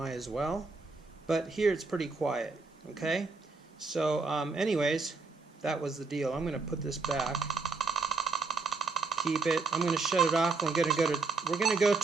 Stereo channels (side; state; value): left; quieter; 4.1 dB